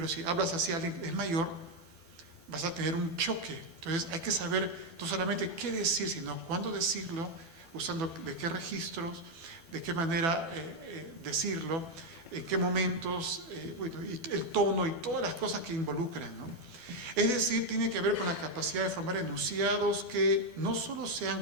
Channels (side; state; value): left; late; 12 ms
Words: si hablas así a alguien que es mayor, vas a tener un choque. Entonces hay que saber no solamente qué decir, sino cuándo decirlo, usando de qué registros, de qué manera decirlo, en qué momentos, bueno, y el tono y todas las cosas que involucran, ¿no? Es decir, tiene que ver con la capacidad de formar enunciados que no solo sean